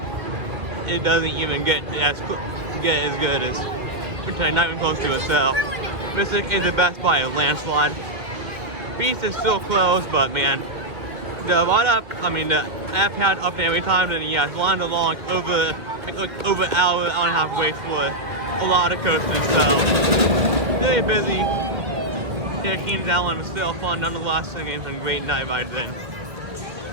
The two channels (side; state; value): left; late; 1.8 ms